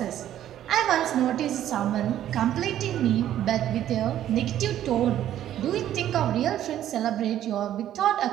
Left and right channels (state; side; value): quieter; left; 11.7 dB